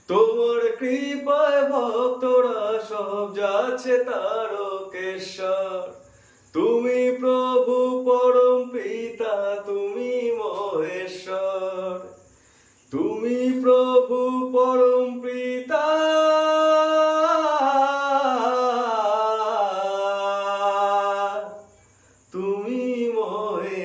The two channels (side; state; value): both; identical; correlation 1.00